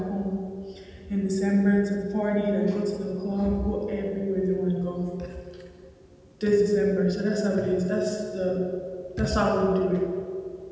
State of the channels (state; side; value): identical; both; correlation 1.00